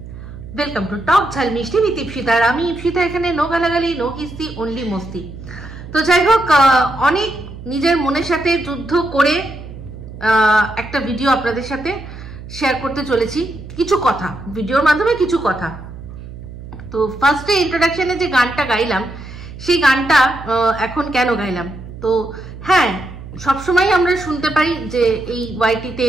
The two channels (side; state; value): right; noise; hum, 13 dB below the sound